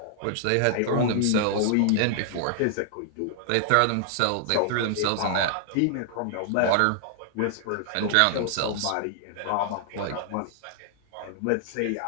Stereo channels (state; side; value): different; both; correlation -0.01